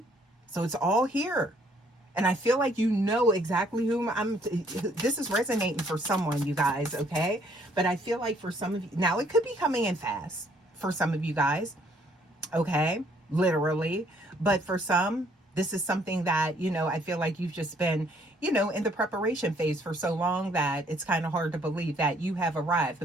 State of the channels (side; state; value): both; normal; correlation 0.65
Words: So it's all here. And I feel like you know exactly whom this is resonating for someone, you guys, okay? But I feel like for some of you, now it could be coming in fast for some of you guys, okay? Literally. But for some, this is something that, I feel like you've just been, in the preparation phase for so long that it's kind of hard to believe that you have arrived.